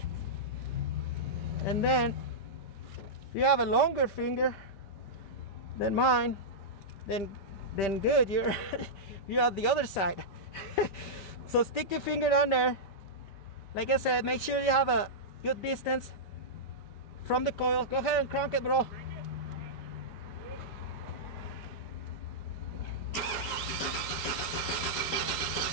And then if you have a longer finger than mine, then good, you're you're on the other side. So stick your finger down there. Like I said, make sure you have a good distance from the coil. Go ahead and crank it, bro.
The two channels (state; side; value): late; right; 5.2 ms